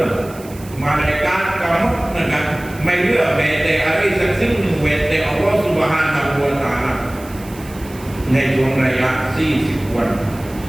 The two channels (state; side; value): noise; right; hiss, 20 dB below the sound